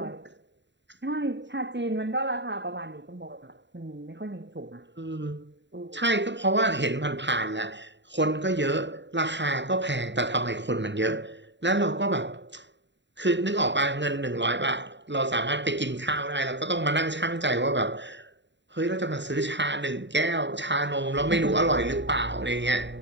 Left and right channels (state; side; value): late; left; 0.52 ms